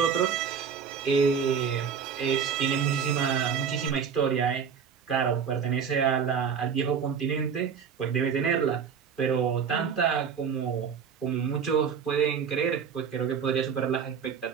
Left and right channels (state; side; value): quieter; left; 6.9 dB